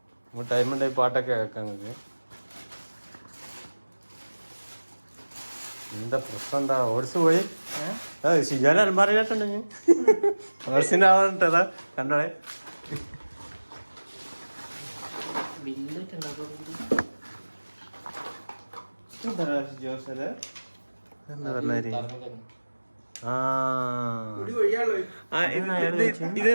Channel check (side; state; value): both; inverted; correlation -1.00